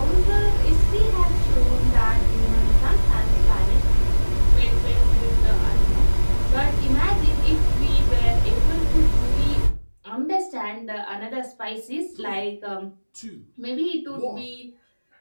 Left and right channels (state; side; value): inverted; both; correlation -1.00